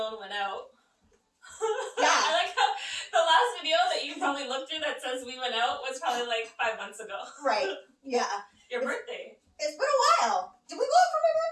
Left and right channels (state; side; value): identical; both; correlation 1.00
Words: went out. Yeah. I like how the last video that you probably looked through that says we went out was probably like 5 months ago. Right. Yeah. Your birthday. It's been a while. Did we go out for my